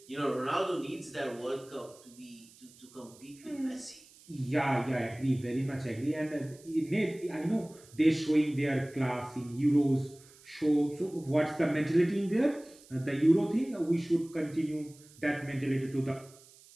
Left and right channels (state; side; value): noise; right; hiss, 24 dB below the sound